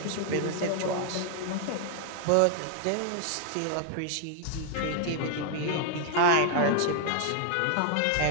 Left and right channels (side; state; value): both; different; correlation 0.00